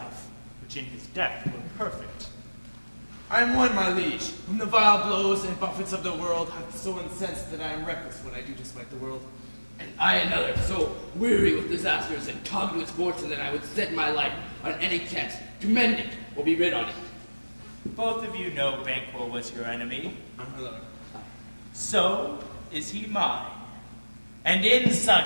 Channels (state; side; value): inverted; both; correlation -1.00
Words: which in his death were perfect. I am one, my liege, whom the vile blows and buffets of the world have so incensed that I am reckless when I do despite the world. And I another, so weary with disasters and tugged with fortune that I would set my life on any chance to mend it or be rid on it. Both of you know Banquo was your enemy. My lord. So is he mine. And in